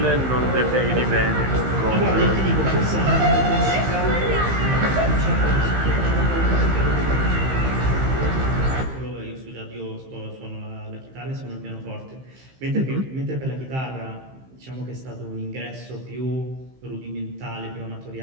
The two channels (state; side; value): late; left; 15 ms